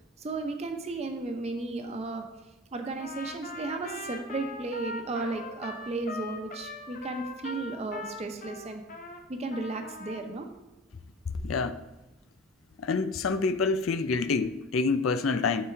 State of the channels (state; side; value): normal; both; correlation 0.36